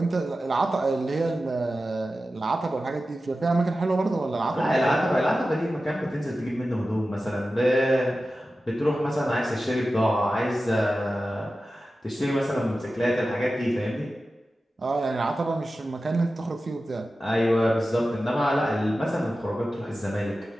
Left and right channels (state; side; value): normal; both; correlation 0.94